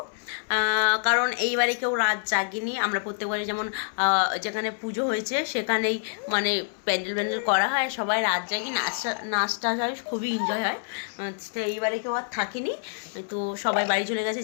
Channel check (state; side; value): silent; right; 60 dB below the other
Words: কারণ এইবারে কেউ রাত জাগিনি। আমরা প্রত্যেকবারে যেমন যেখানে পুজো হয়েছে সেখানেই মানে প্যান্ডেল করা হয়, সবাই রাত জাগি, নাচটা হয়, খুবই এনজয় হয়। তো এইবারে কেউ আর থাকিনি, তো সবাই বাড়ি চলে গেছে